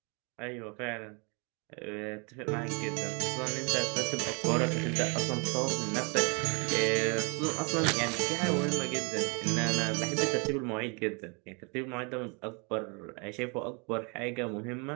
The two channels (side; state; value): left; quieter; 33.2 dB